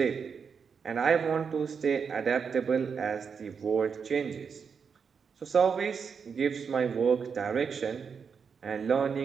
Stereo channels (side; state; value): left; quieter; 6.2 dB